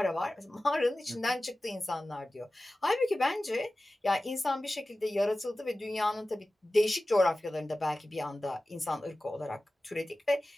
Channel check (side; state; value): both; normal; correlation 0.96